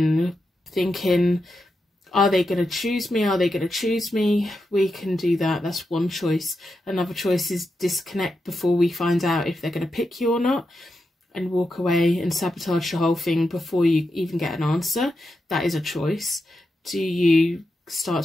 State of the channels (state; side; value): normal; both; correlation 0.87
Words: thinking, are they going to choose me? Are they going to choose me? We can do that. That's one choice. Another choice is disconnect before we find out if they're going to pick you or not, and walk away and sabotage the whole thing before you even get an answer. That is a choice. Do you